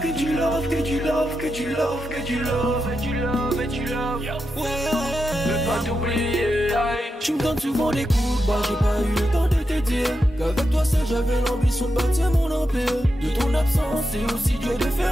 du love, que du love, que du love, que du love, et du love, et du love. Ouais, veux pas t'oublier. Tu me donnes souvent des coups de barre, j'ai pas eu le temps de te dire qu'avec toi seul j'avais l'ambition de bâtir mon empire. De ton absence c'est aussi dur de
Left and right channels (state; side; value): normal; both; correlation 0.87